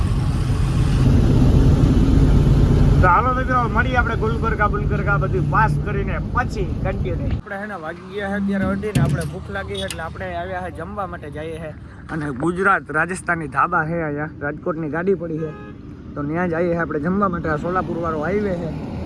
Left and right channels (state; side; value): identical; both; correlation 1.00